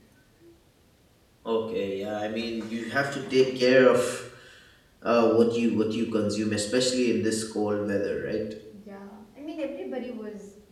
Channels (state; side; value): identical; both; correlation 1.00